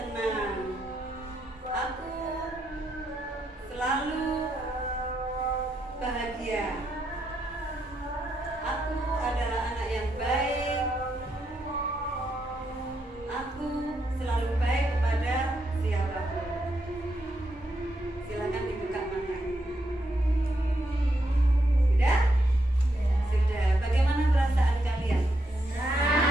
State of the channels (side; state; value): both; normal; correlation 0.80